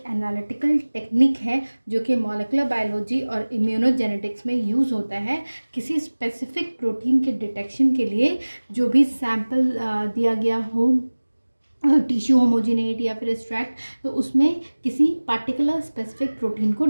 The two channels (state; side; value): inverted; both; correlation -1.00